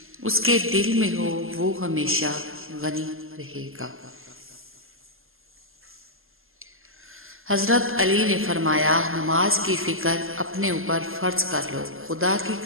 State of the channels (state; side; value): late; left; 0.60 ms